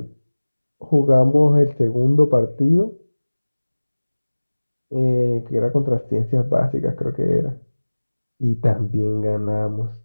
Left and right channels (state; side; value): inverted; both; correlation -1.00